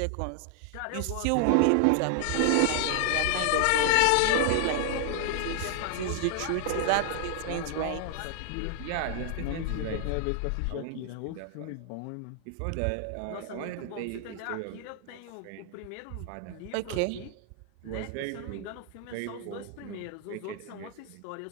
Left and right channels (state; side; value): different; both; correlation 0.00